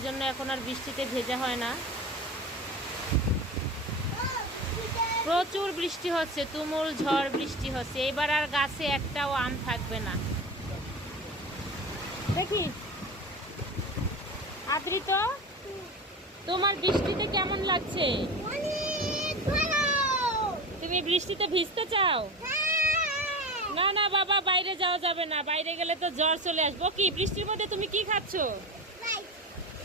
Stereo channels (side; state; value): both; normal; correlation 0.28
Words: জন্য এখন আর বৃষ্টিতে ভেজা হয় না। প্রচুর বৃষ্টি হচ্ছে, তুমুল ঝড় বৃষ্টি হচ্ছে। এবার আর গাছে একটাও আম থাকবে না। দেখি আদ্রিত, তোমার বৃষ্টিতে কেমন লাগছে? তুমি বৃষ্টিতে ভিজতে চাও? না না বাবা, বাইরে যাওয়া যাবে না, বাইরে গেলে তো জ্বর চলে আসবো। কি বৃষ্টির মধ্যে তুমি কি খাচ্ছ?